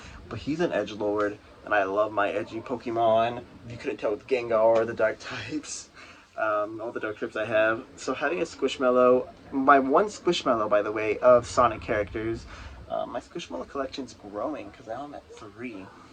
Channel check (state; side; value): identical; both; correlation 1.00